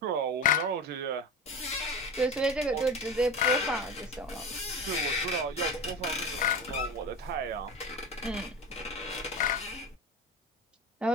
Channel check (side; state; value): both; normal; correlation 0.28